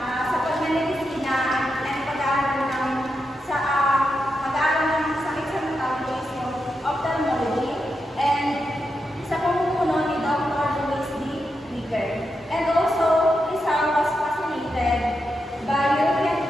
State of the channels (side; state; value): both; normal; correlation 0.86